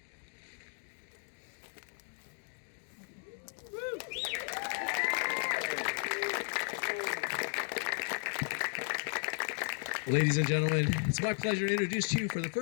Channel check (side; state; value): right; silent; 54 dB below the other